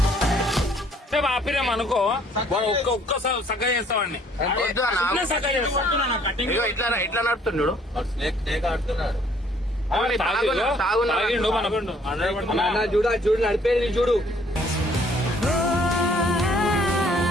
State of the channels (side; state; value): both; normal; correlation 0.61